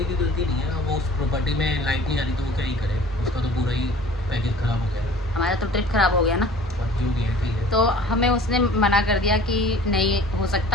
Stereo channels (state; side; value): normal; both; correlation 0.47